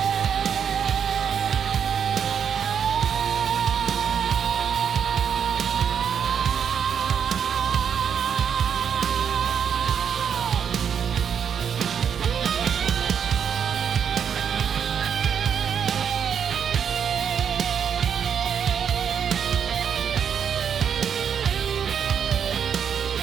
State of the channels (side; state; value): left; quieter; 7.7 dB